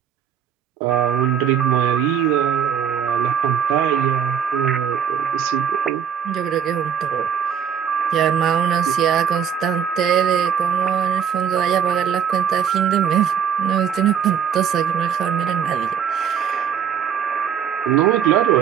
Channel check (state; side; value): quieter; left; 8.1 dB